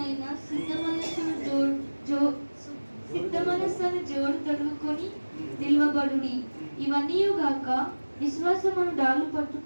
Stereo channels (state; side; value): inverted; both; correlation -1.00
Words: సిద్ధ మనస్సును జోడు తొడుగుకొని నిల్వబడుడి. ఇవన్నీ గాక విశ్వాసమును డాలు